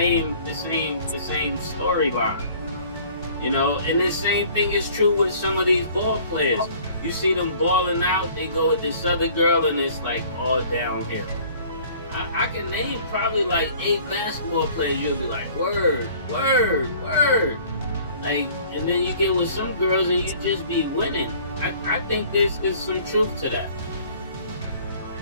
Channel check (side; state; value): both; inverted; correlation -0.52